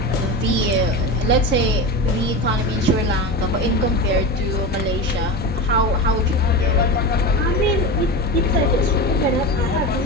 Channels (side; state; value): both; normal; correlation 0.24